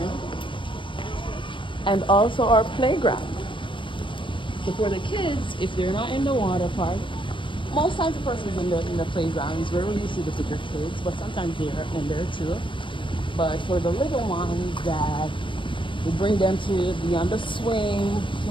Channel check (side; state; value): right; late; 0.24 ms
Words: And also our playground. So for the kids, if they're not in the water park, most times the person's in the playgrounds. Rarely you see the bigger kids, but sometimes they're in there too. But for the little ones, that we bring them to be on the swing to